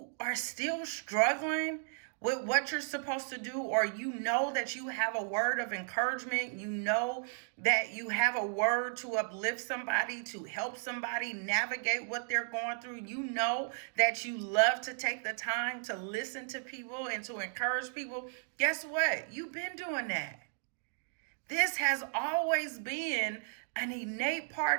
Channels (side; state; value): left; silent; digital silence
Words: are still struggling with what you're supposed to do, or you know that you have a word of encouragement, you know that you have a word to uplift somebody, to help somebody navigate what they're going through, you know that you love to take the time to listen to people and to encourage people. Guess what? You've been doing that. This has always been an innate part